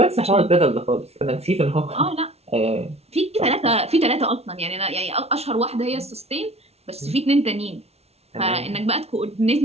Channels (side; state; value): left; late; 0.30 ms